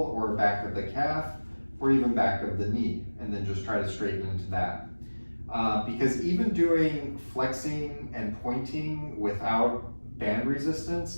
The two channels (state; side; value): inverted; both; correlation -1.00